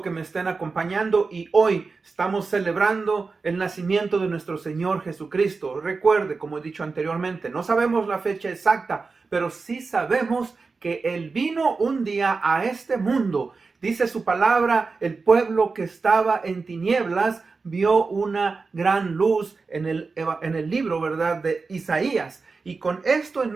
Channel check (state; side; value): quieter; left; 4.3 dB